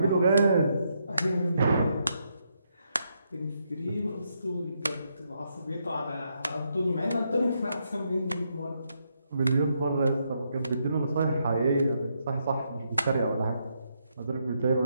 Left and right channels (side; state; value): both; inverted; correlation -0.79